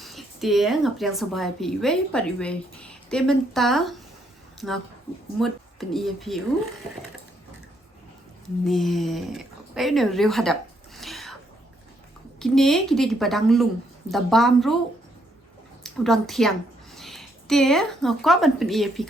Dia ngapriang sabay pi iwe pat iwe. Dia menta ngak mut pen iya piu. Ne, ay ne Riewhadem. Kini di padang lung. Da bam ru udang tiang. Dia ngakwa ban pen iya pi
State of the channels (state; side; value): normal; both; correlation 0.73